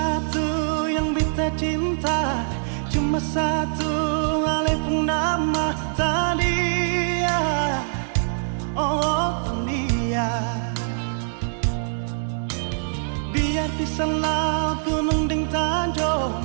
yang beta cinta, cuma satu oleh nama Tania. Oh Tania, biar pisah laut gunung dan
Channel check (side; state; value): left; silent; digital silence